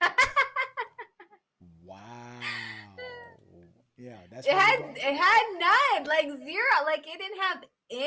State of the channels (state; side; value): identical; both; correlation 1.00